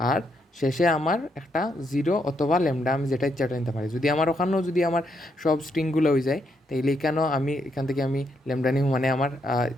আর শেষে আমার একটা 0 অথবা ল্যামডা আমি যেটা ইচ্ছা ওটা নিতে পারি। যদি আমার ওখানেও যদি আমার সব স্ট্রিংগুলো হয়ে যায় তাইলে এখানেও আমি এখান থেকে আমি ল্যামডা নিব, মানে আমার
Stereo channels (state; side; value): normal; both; correlation 0.77